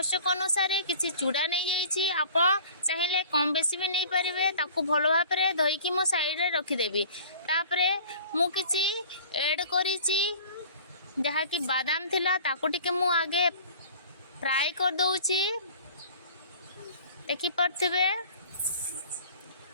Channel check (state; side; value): inverted; both; correlation -0.45